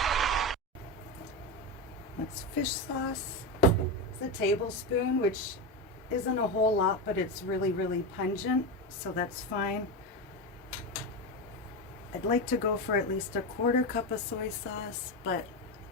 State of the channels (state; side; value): normal; both; correlation 0.15